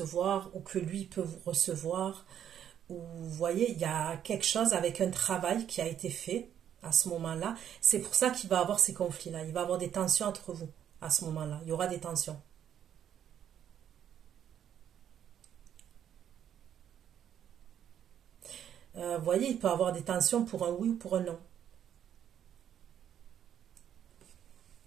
ou que lui peut vous recevoir. Ou vous voyez, il y a quelque chose avec un travail qui a été fait à ce moment-là. C'est pour ça qu'il va avoir ces conflits-là. Il va avoir des tensions entre vous à ce moment-là. Il y aura des tensions. Vous voyez, il peut avoir des tensions pour un oui ou pour un non.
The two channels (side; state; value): left; quieter; 9.6 dB